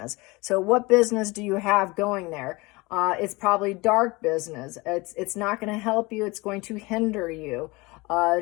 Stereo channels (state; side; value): quieter; right; 24.0 dB